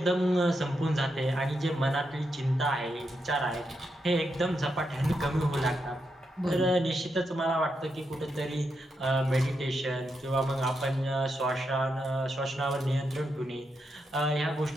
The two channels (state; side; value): normal; both; correlation 0.83